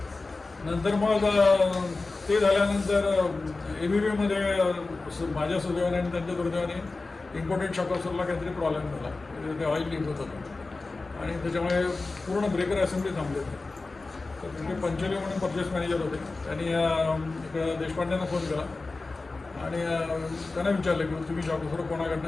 नंतर मग ते झाल्यानंतर ABBमध्ये माझ्या सुदैवाने आणि त्यांच्या दुर्दैवाने इम्पोर्टेड शॉकॉसरला काहीतरी प्रॉब्लेम झाला. ते ऑइल लीक होत होतं आणि त्याच्यामुळे पूर्ण ब्रेकर असेंब्ली थांबली होती. तर तिथे पंचोली म्हणून परचेस मॅनेजर होते. त्यांनी इकडं देशपांड्यांना फोन केला आणि त्यांना विचारलं की तुम्ही शॉकॉसर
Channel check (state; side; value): quieter; right; 3.6 dB